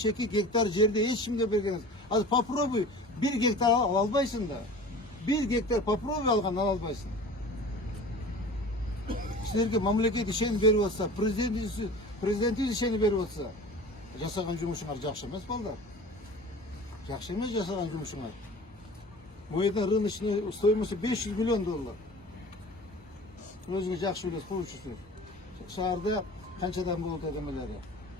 гектар жерде эч кимге берген эмес. Ал попробуй 1 гектар ала албайсың да. 1 гектар попробуй алган ала албайсың. Силерге мамлекет ишенип берип атса, президентибиз ишенип берип атса, жасаган жумушуңар жакшы эмес балдар. Жакшы эмес жасаган жумушуңар. Бул жерде рыночный стоимости 500 миллион доллар. Өзүңүз жакшы билесиз, коюучусуз. Шаарда канчадан болот адамдары?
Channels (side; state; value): both; normal; correlation 0.39